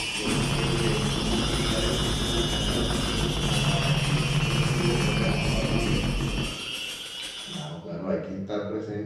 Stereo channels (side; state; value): both; identical; correlation 1.00